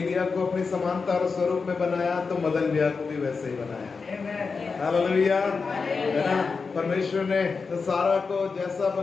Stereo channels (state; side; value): quieter; right; 4.8 dB